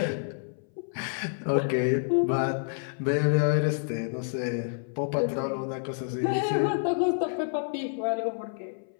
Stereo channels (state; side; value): silent; right; 59 dB below the other